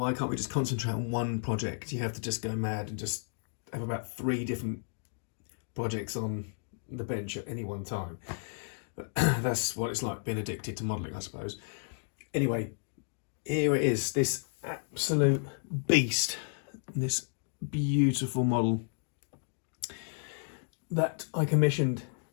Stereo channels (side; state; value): right; silent; digital silence